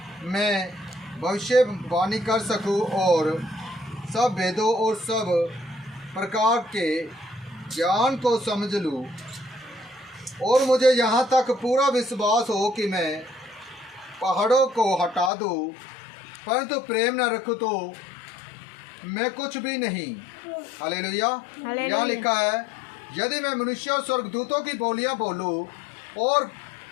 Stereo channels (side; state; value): right; drops out; at 15.3 s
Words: मैं भविष्यवाणी कर सकूं और सब वेदों और सब प्रकार के ज्ञान को समझ लूं और मुझे यहाँ तक पूरा विश्वास हो कि मैं पहाड़ों को हटा दूं, परंतु प्रेम न रखूं तो मैं कुछ भी नहीं। हालेलुया। यहाँ लिखा है, यदि मैं मनुष्य और स्वर्गदूतों की बोलियां बोलूं और